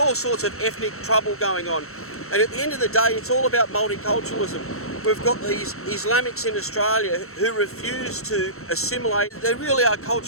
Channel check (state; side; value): late; right; 0.63 ms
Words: sorts of ethnic trouble going on. And at the end of the day, it's all about multiculturalism. We've got these Islamics in Australia who refuse to assimilate. They really are